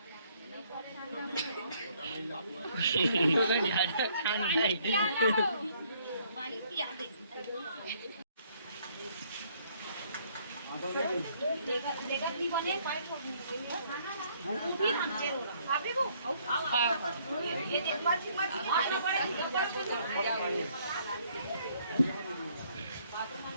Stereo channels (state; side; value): inverted; both; correlation -0.65